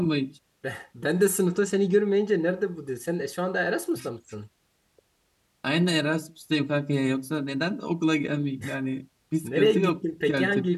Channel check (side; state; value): both; identical; correlation 1.00